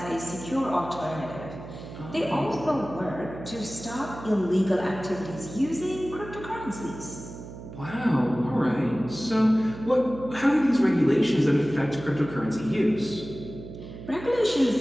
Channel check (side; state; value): right; noise; hum, 13 dB below the sound